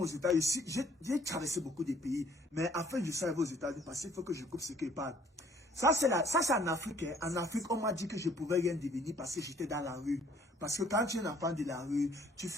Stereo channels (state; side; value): normal; both; correlation 0.59